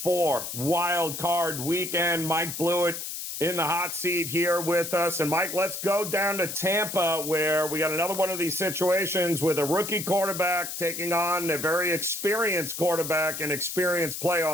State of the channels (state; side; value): noise; left; hiss, 6 dB below the sound